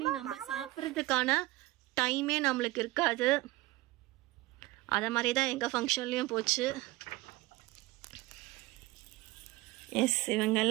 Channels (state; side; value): quieter; left; 19.5 dB